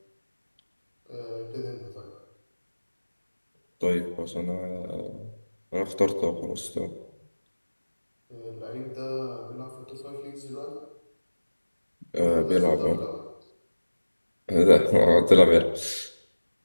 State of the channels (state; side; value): inverted; both; correlation -1.00